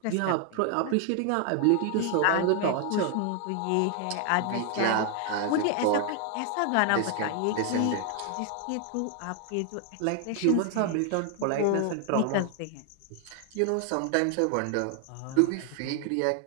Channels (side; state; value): both; different; correlation 0.00